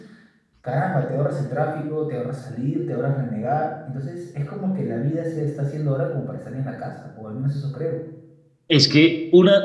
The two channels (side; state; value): both; identical; correlation 1.00